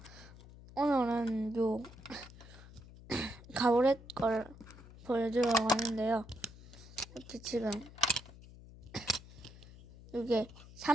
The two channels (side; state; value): left; noise; hum, 18 dB below the sound